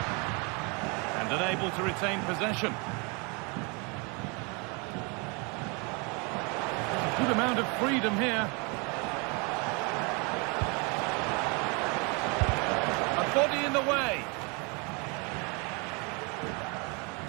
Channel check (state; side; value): quieter; left; 31.4 dB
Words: Unable to retain possession. A good amount of freedom here. A body in the way.